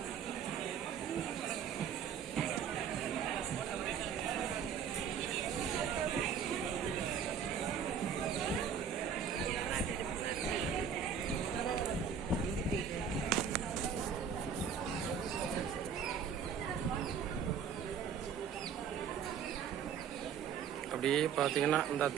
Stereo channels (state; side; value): quieter; left; 7.3 dB